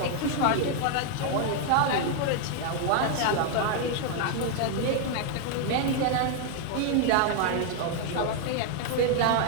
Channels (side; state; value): both; different; correlation 0.00